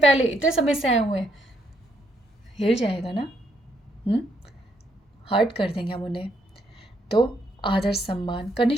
इतने समय से आए हुए हैं, हिल जाएगा ना, हर्ट कर देंगे हम उन्हें। तो आदर सम्मान,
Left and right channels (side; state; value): both; normal; correlation 0.73